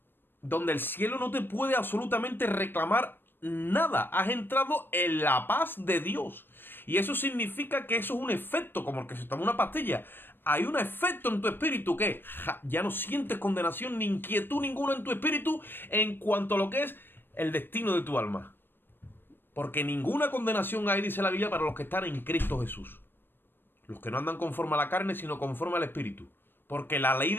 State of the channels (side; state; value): right; late; 0.098 ms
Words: donde el cielo no te puede absolutamente reclamar nada. Has entrado en la paz de Dios. Y eso significa que eso es un efecto, como el que se toma una pastilla. Hay un efecto en tu espíritu que ya no sientes condenación ni inquietud ninguna en tu espíritu en cuanto a lo que es el destino de tu alma. Porque ninguna condenación hay, dice la Biblia, para los que están en Cristo Jesús. Los que no andan conforme a la carne, sino conforme al espíritu. Porque la ley